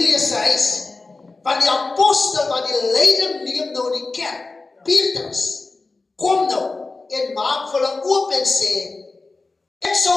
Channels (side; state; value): right; quieter; 3.7 dB